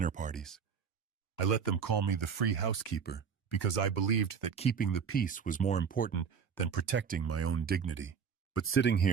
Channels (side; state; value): left; quieter; 6.6 dB